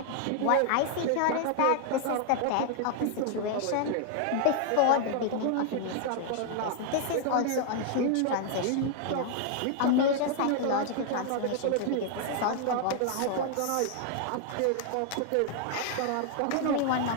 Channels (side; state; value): both; different; correlation 0.00